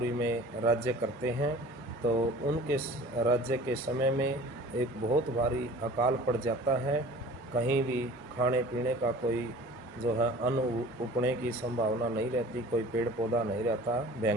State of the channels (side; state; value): both; normal; correlation 0.44